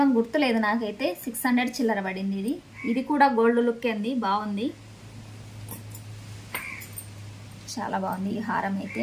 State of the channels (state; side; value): identical; both; correlation 1.00